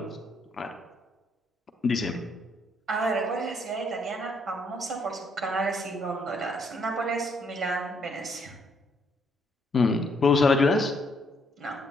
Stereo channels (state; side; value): normal; both; correlation 0.70